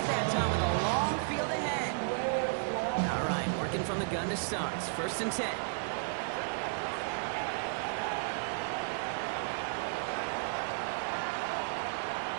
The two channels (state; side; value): silent; left; digital silence